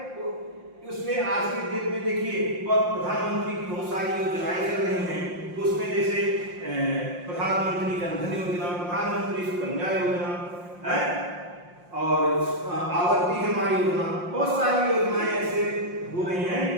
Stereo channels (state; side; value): late; left; 5.7 ms